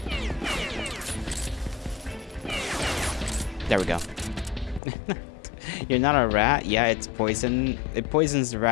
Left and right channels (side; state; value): right; drops out; at 4.8 s